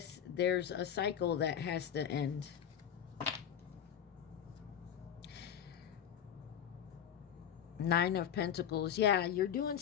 there's a cycle that has to end. Nine of Pentacles. Yeah, you're doing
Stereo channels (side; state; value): right; quieter; 9.1 dB